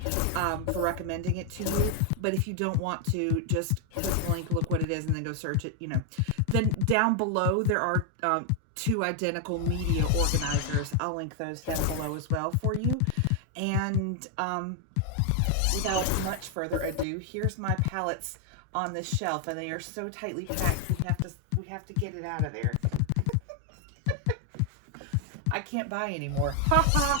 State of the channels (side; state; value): both; different; correlation 0.00